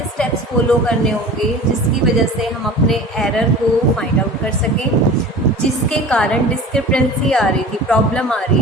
स्टेप्स फॉलो करने होंगे जिसकी वजह से हम अपने एरर को फाइंड आउट कर सकें, जिसके कारण डिस्क्रिपेंसी आ रही थी, प्रॉब्लम आ रही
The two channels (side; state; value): both; normal; correlation 0.38